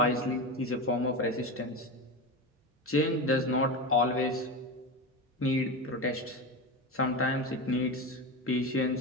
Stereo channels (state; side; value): normal; both; correlation 0.21